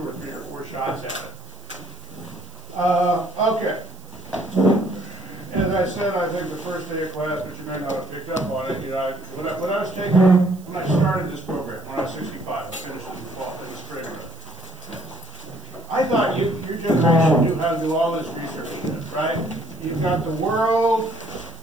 3 or 4 shots at it. Okay. As I said, I think the first day of class, but you may not have picked up on it, when I was taking, when I started this program, when I was 65, I finished it in the spring. I thought your generation knew how to do all this research, right? You've got the world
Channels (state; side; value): noise; right; hiss, 25 dB below the sound